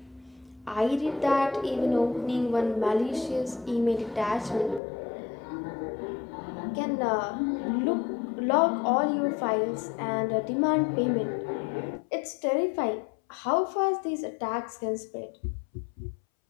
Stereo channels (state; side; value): drops out; right; at 4.8 s